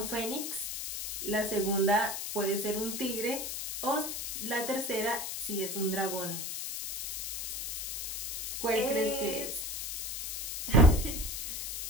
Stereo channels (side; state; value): left; noise; hiss, 4 dB below the sound